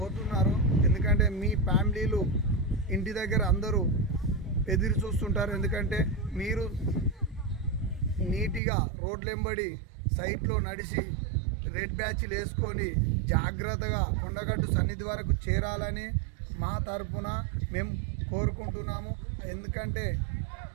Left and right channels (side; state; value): left; drops out; at 8.6 s